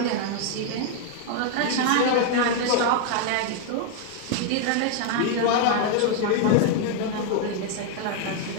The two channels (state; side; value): different; both; correlation 0.00